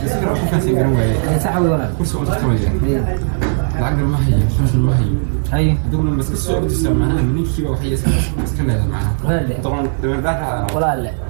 كيف تسجل وين صح ولا كرسي انا تكتمل العقل ما هي خمس ما هي هذول لما تسكسوا تسمعها من كيف وحي اسكن هذا معنا طبعا ولا لا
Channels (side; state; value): left; silent; digital silence